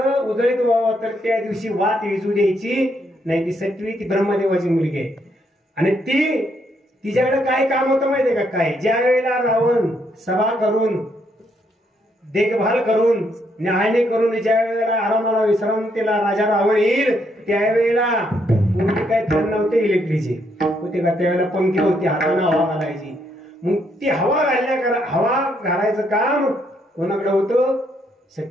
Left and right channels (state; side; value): normal; both; correlation 0.74